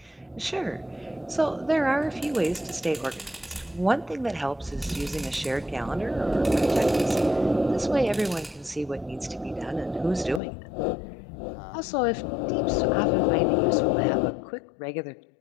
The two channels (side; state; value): right; drops out; at 10.4 s